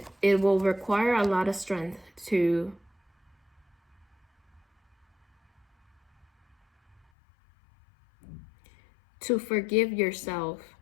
it will require a lot of strength to forgive yourself,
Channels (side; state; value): right; drops out; at 7.0 s